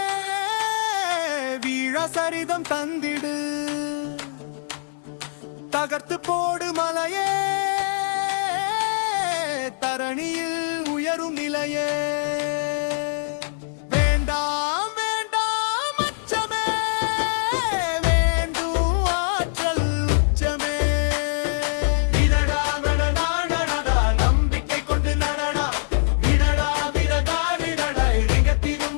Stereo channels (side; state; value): right; silent; digital silence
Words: வீழ சரிதம் தந்திடு தகர்த்து போடு மலையே தரணியில் உயரும் நிலையே வேண்டாம் வேண்டாம் அச்சமே வேண்டும் ஆற்றல் உச்சமே விடடா விடடா நடடா நம்பிக்கை கொண்டு நடடா விடடா விடடா விடடா